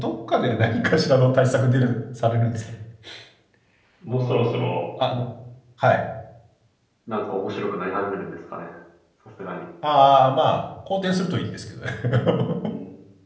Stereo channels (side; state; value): both; identical; correlation 1.00